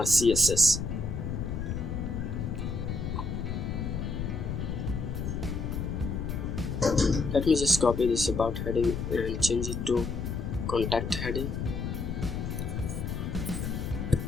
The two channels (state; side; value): noise; left; rumble, 3 dB below the sound